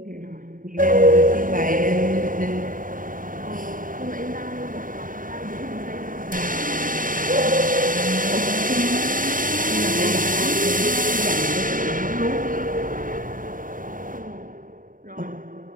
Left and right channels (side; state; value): left; late; 0.39 ms